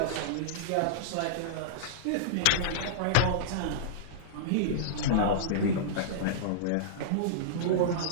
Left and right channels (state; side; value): different; both; correlation -0.03